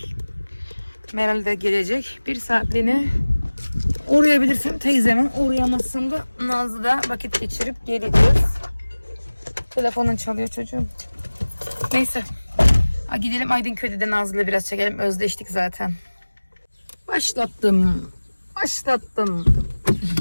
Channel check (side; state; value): both; inverted; correlation -1.00